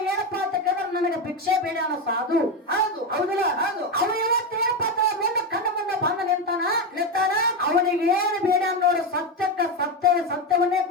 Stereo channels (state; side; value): normal; both; correlation 0.12